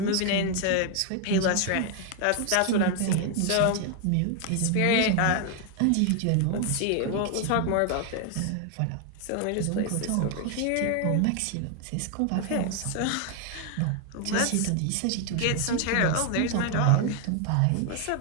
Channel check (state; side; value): different; both; correlation 0.00